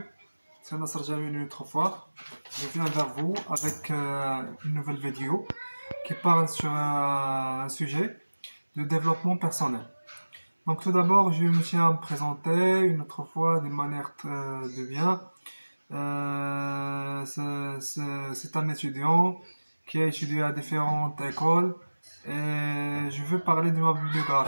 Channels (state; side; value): inverted; both; correlation -1.00